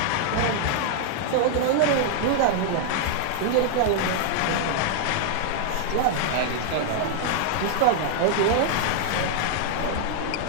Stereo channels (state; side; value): different; both; correlation 0.00